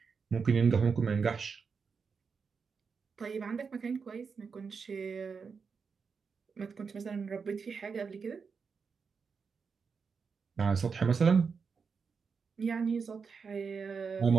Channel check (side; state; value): left; quieter; 5.5 dB